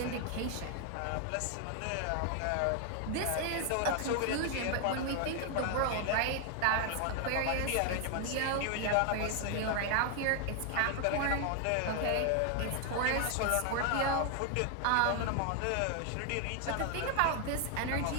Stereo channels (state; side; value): different; both; correlation 0.00